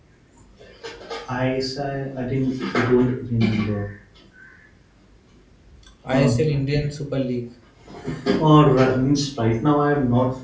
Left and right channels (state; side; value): identical; both; correlation 1.00